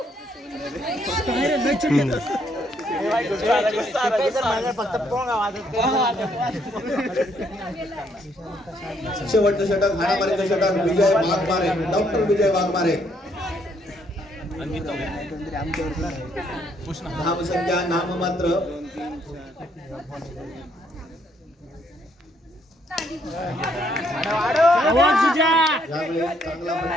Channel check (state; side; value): normal; both; correlation 0.70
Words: शेवटचं षटक हाणामारीचं षटक विजय वाघमारे. डॉक्टर विजय वाघमारे. धावसंख्या नाममात्र. यावेळी चांगला